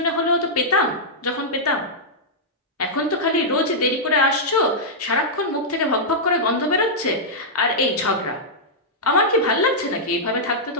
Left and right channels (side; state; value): both; normal; correlation -0.09